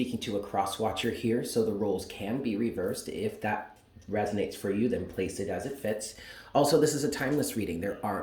to a cross-watcher here, so the roles can be reversed. If that resonates for you, then place it as it fits. Also, this is a timeless reading. There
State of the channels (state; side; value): identical; both; correlation 1.00